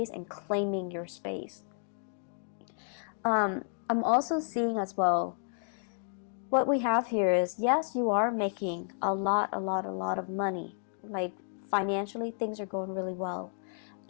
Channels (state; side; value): silent; right; digital silence